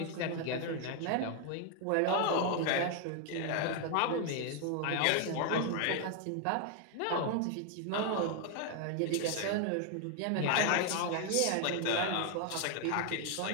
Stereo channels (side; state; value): both; different; correlation 0.00